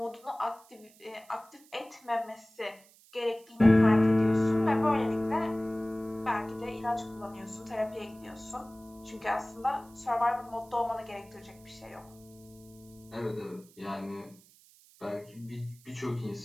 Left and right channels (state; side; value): noise; right; hiss, 26 dB below the sound